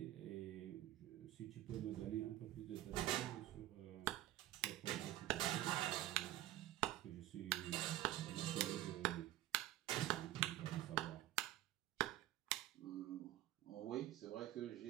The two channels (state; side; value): quieter; left; 14.6 dB